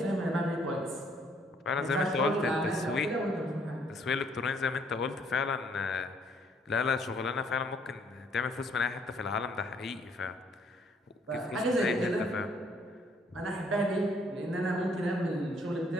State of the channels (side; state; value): both; normal; correlation 0.65